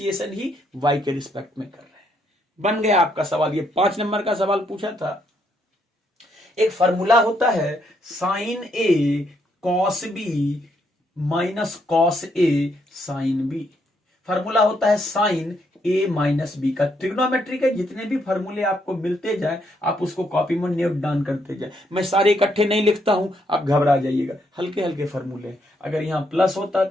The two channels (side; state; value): both; normal; correlation 0.74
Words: ही y के रिस्पेक्ट में कर रहे हैं। बन गया आपका सवाल। ये 5 नंबर का सवाल पूछा था। एक फॉर्मूला होता है sign A cos B minus cos A sine B. Formula होता है साइन ए माइनस बी का। ट्रिग्नोमेट्री के जितने भी फॉर्मूले आपको मिलते जाए आप उसको कॉपी में नोट डाउन करते जाए। मैं सारे इकट्ठे नहीं लिखता हूं, आप घबरा जाइएगा, हल्के हल्के फॉर्मूले। अगर यहां प्लस होता